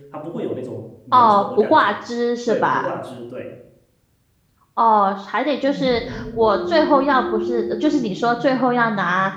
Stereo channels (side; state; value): both; identical; correlation 1.00